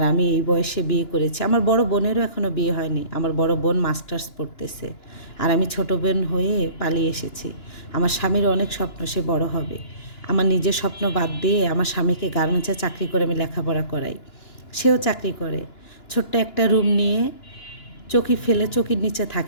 আমি এই বয়সে বিয়ে করেছি। আমার বড় বোনেরও এখনও বিয়ে হয়নি, আমার বড় বোন মাস্টার্স পড়তেছে, আর আমি ছোট বোন হয়ে পালিয়ে এসেছি। আমার স্বামীর অনেক স্বপ্ন, সে বড় হবে। আমার নিজের স্বপ্ন বাদ দিয়ে আমার স্বামীকে গার্মেন্টসে চাকরি করে আমি লেখাপড়া করাই, সেও চাকরি করে। ছোট্ট একটা রুম নিয়ে চকি ফেলে চকির নিচে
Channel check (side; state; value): right; late; 2.9 ms